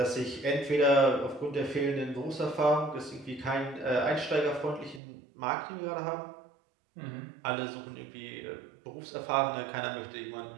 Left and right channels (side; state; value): left; drops out; at 5.0 s